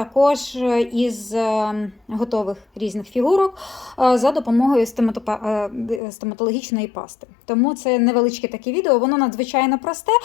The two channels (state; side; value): drops out; right; at 6.0 s